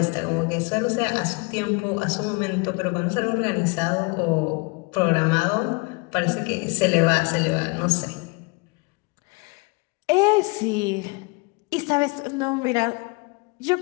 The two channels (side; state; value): right; quieter; 28.6 dB